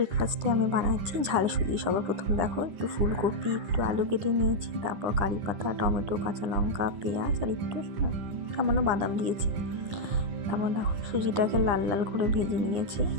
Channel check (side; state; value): left; late; 9.8 ms